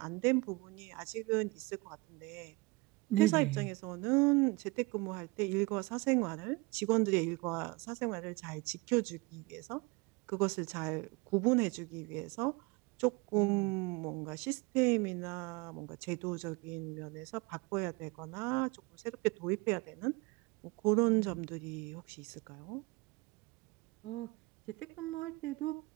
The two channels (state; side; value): quieter; left; 24.2 dB